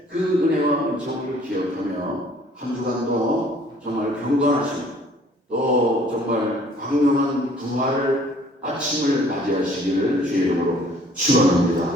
그 은혜와 은총을 기억하며 한 주간도 정말 경건하시고 또 정말 광명한 부활 아침을 맞이하시기를 주의 이름으로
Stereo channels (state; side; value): normal; both; correlation 0.57